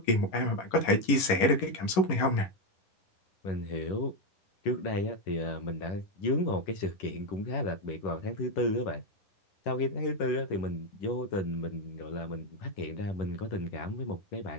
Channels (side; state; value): right; late; 11 ms